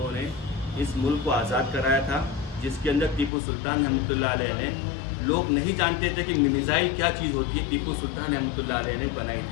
ने इस मुल्क को आज़ाद कराया था, जिसके अंदर टीपू सुल्तान रहमतुल्लाह अलैह ने, लोग नहीं जानते थे कि मिसाइल क्या चीज़ होती है। टीपू सुल्तान रहमतुल्लाह अलैह ने बनाई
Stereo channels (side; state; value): right; drops out; at 3.3 s